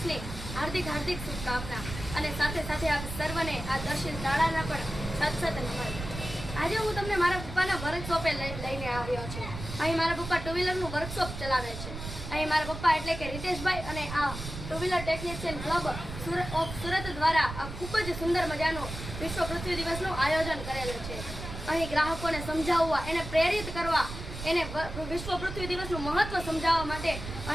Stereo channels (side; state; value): right; noise; rumble, 8 dB below the sound